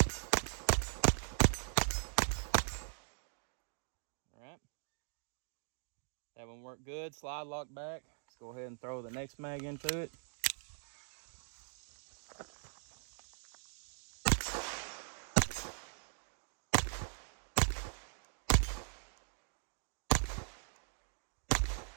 That one worked good. Slide lock back. Let's go ahead and throw the next mag into it.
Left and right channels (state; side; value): silent; left; digital silence